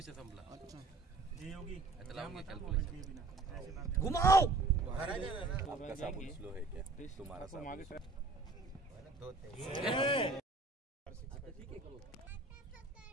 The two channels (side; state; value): left; quieter; 3.5 dB